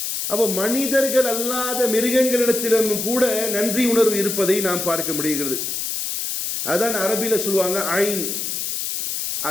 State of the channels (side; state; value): left; noise; hiss, 3 dB below the sound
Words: அப்போ மனிதர்கள் அல்லாத மிருகங்களிடத்திலும் கூட நன்றி உணர்வு இருப்பதை நாம் பார்க்க முடிகிறது. அதான் அரபியில் சொல்லுவாங்க ஐன்.